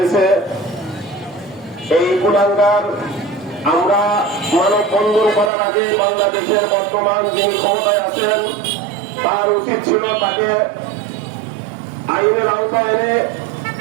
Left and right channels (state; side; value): drops out; left; at 5.5 s